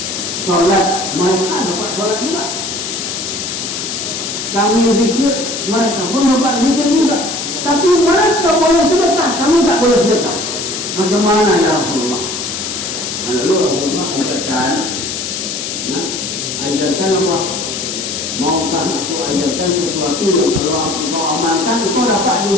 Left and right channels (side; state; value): left; noise; hiss, 4 dB below the sound